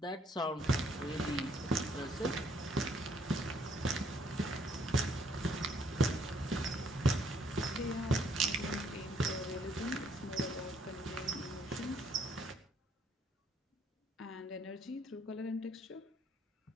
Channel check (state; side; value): normal; both; correlation 0.68